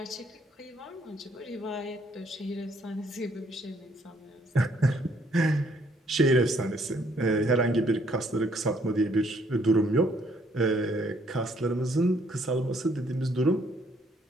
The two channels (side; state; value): both; normal; correlation 0.67